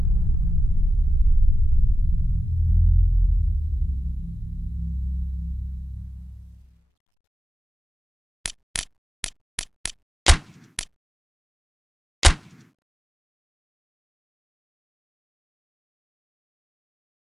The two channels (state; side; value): normal; both; correlation 0.92